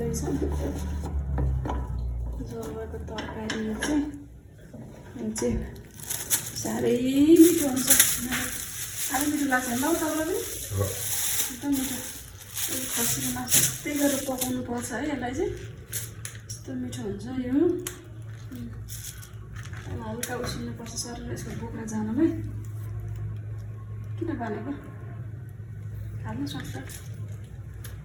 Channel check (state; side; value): identical; both; correlation 1.00